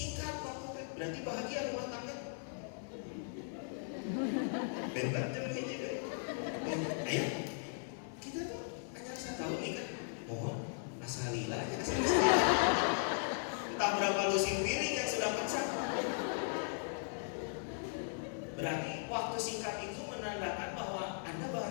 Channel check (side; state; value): right; silent; 53 dB below the other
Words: waktu, berarti bahagia rumah tangga. Bentar jangan hiji. Ayo, kita tuh hanya 1 tahun nih kan. Mohon, asalila aja asalila. Entah berapa lusin piring yang sudah pecah. Berarti waktu singkat itu menandakan bahwa Anda